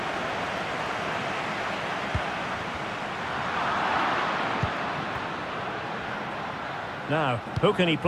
Now, who can he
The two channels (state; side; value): identical; both; correlation 1.00